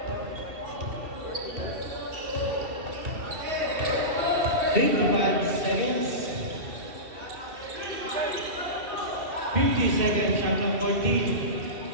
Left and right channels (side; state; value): left; late; 2.7 ms